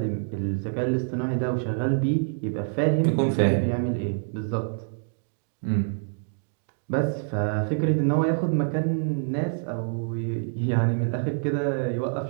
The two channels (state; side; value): silent; left; digital silence